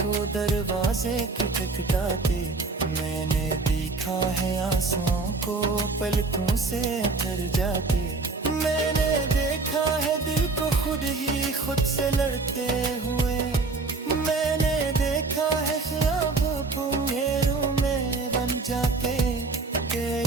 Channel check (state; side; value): quieter; left; 3.9 dB